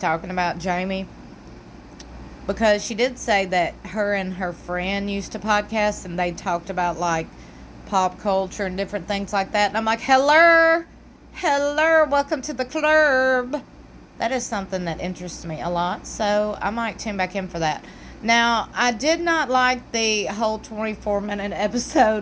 about, Jamie. Because she did say that her and her friend used to podcast and they talked about like pop culture and different things like that. And I'm like, hello, welcome to the club. That is something that interests me a lot. So I might tune back in for that. Now, I did not like the whole 24-minute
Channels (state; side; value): identical; both; correlation 1.00